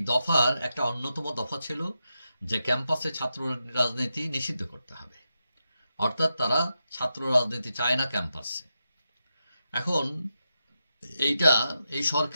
দফার একটা অন্যতম দফা ছিল যে ক্যাম্পাসে ছাত্র রাজনীতি নিষিদ্ধ করতে হবে। অর্থাৎ তারা ছাত্র রাজনীতি চায় না ক্যাম্পাসে। এখন এইটা এই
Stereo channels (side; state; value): both; inverted; correlation -0.88